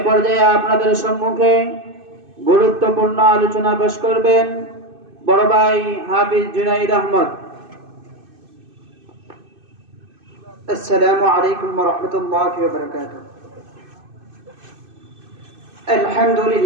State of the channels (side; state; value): left; late; 2.6 ms